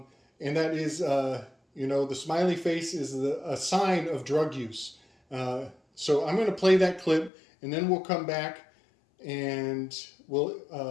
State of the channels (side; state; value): right; drops out; at 7.3 s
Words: that is, the smiley face is a sign of drug use. So I'm going to play that clip, and then we'll come back and we